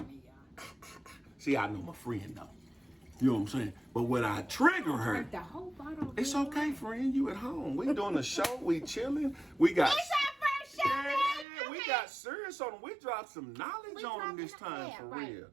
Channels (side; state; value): left; drops out; at 11.5 s